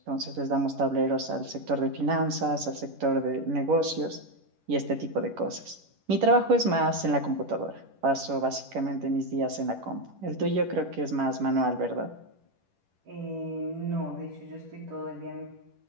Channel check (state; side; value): late; left; 11 ms